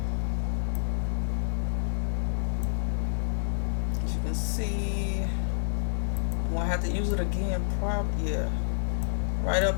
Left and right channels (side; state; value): right; silent; 59 dB below the other